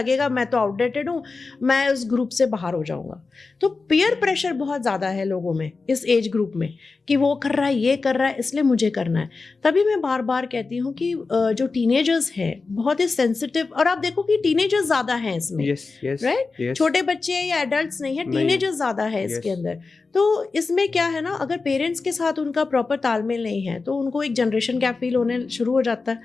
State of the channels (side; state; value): right; quieter; 4.1 dB